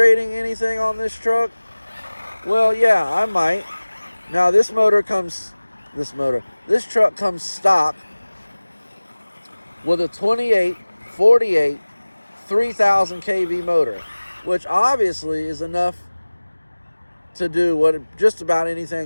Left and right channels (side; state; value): both; inverted; correlation -1.00